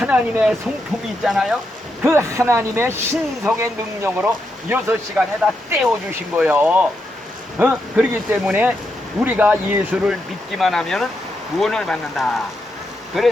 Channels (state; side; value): normal; both; correlation 0.83